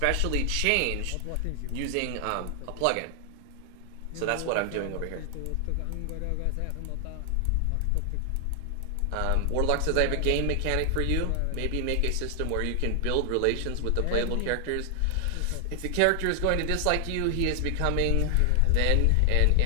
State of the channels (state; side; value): different; both; correlation 0.00